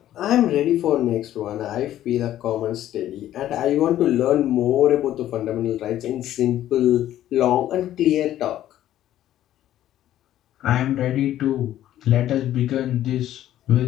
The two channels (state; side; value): quieter; right; 12.6 dB